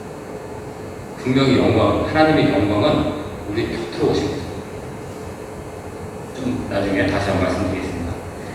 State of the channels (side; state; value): both; identical; correlation 1.00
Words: 분명히 하나님의 영광은 우리 곁으로 오신 거죠. 좀 나중에 다시 한번 말씀드리겠습니다.